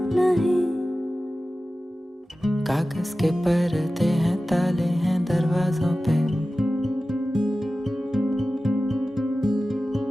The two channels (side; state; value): both; normal; correlation 0.95